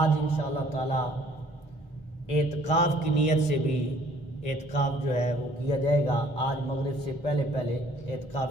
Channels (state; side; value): normal; both; correlation 0.58